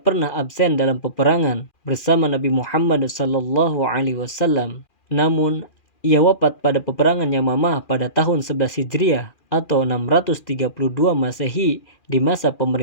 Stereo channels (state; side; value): late; right; 2.4 ms